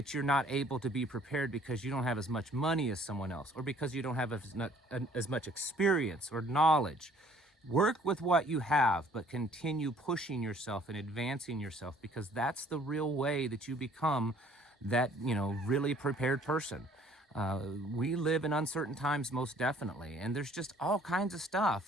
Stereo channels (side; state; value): both; normal; correlation 0.58